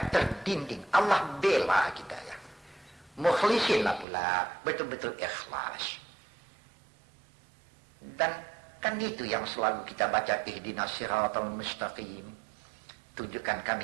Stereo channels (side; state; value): left; drops out; at 4.0 s